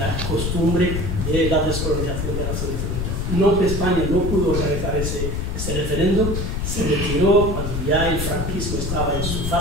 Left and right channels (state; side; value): noise; left; rumble, 2 dB below the sound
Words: costumbre de la descolonización de la Naciones Unidas. No, España no pudo organizar ese referéndum, se retiró cuando ya el franquismo estaba en su